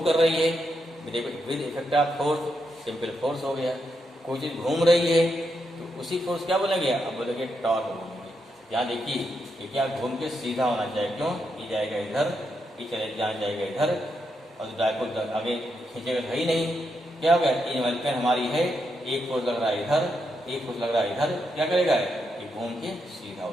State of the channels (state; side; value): normal; both; correlation 0.82